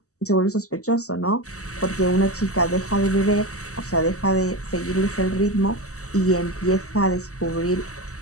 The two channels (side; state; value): right; late; 0.66 ms